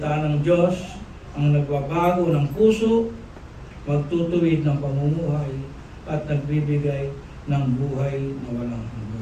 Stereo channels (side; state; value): both; identical; correlation 1.00